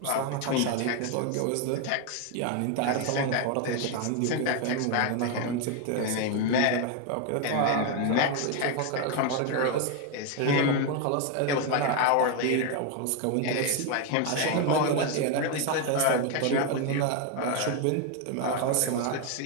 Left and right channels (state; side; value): different; both; correlation 0.01